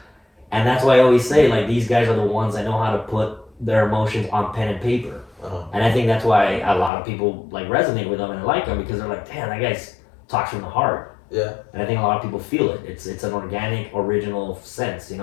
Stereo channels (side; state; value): right; drops out; at 6.9 s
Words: And that's why I always say, like, these guys are the ones that know how to put their emotions on pen and paper. And I think that's why a lot of people, like, resonate with them and like them because they're like, damn, that guy talks from the heart. Yeah. And I think a lot of people feel it. It's an organic, original sense, you